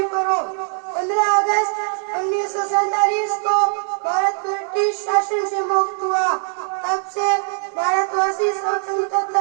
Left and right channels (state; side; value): silent; left; 57 dB below the other